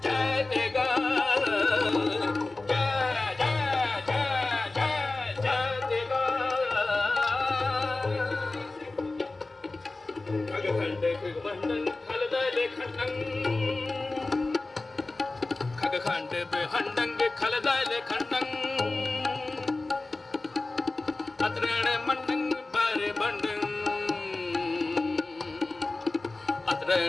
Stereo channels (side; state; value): right; quieter; 3.2 dB